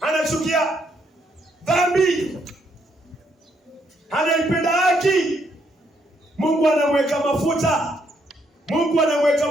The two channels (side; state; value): both; normal; correlation 0.74